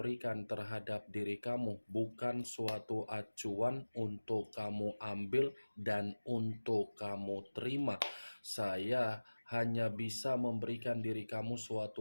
terhadap diri kamu bukan suatu acuan untuk kamu ambil dan untuk kamu terima. Saya hanya bisa memberikan diri kamu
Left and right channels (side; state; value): both; inverted; correlation -1.00